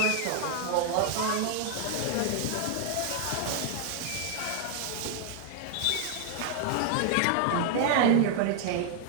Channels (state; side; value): different; both; correlation 0.00